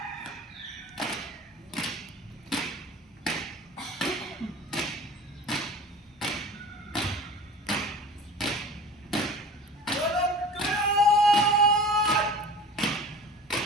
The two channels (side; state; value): both; normal; correlation 0.40